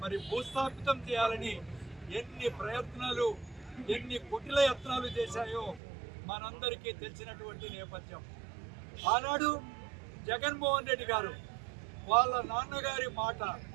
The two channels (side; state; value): left; drops out; at 5.8 s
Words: మరి భూస్థాపితం చేయాలని ఎన్ని ప్రయత్నాలు, ఎన్ని కుటిల యత్నాలు చేశాయో మనందరికీ తెలిసినటువంటి నేపథ్యం. ఆనాడు జగన్మోహన్ రెడ్డి గారు వాళ్ళ నాన్నగారి మాట